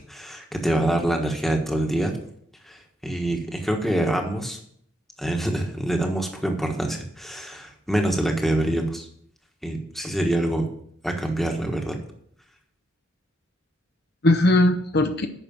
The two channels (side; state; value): both; normal; correlation 0.80